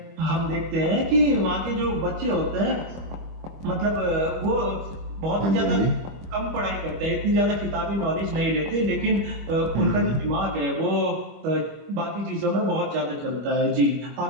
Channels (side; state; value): left; late; 25 ms